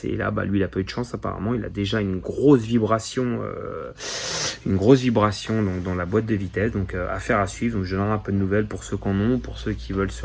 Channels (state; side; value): identical; both; correlation 1.00